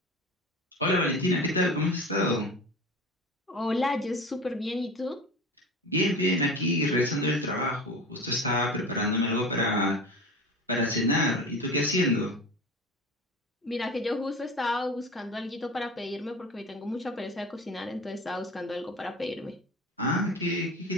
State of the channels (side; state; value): both; normal; correlation 0.32